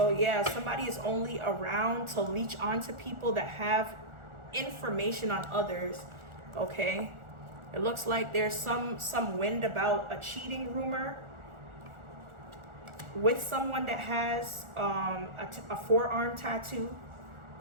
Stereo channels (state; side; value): late; left; 1.4 ms